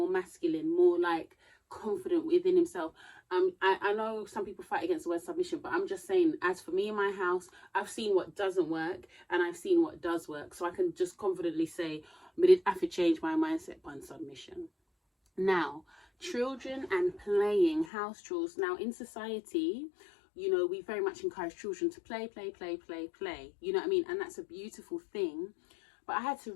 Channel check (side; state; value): right; drops out; at 17.9 s